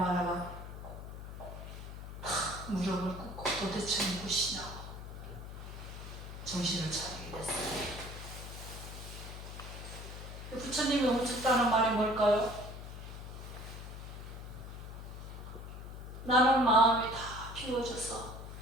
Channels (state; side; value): noise; left; hum, 10 dB below the sound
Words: 탁 무릎을 꿇고 도대체 누구시냐고 정신을 차리게 됐어요. 부처님이 멈췄다는 말이 뭘까요? 나는 마음이 다 비워져서